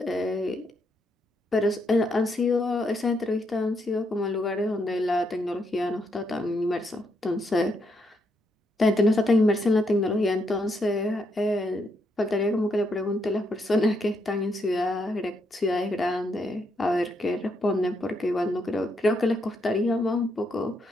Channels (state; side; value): normal; both; correlation 0.77